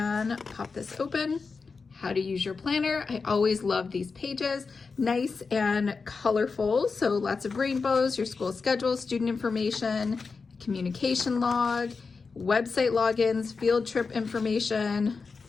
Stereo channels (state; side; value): quieter; right; 4.7 dB